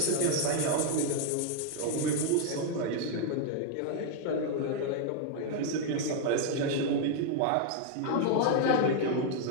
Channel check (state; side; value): different; both; correlation 0.00